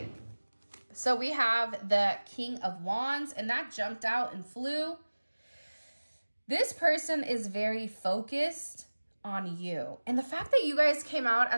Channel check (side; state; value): both; inverted; correlation -1.00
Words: So we have the King of Wands, and that jumped out and flew. This person is very focused on you. And the fact that you guys came out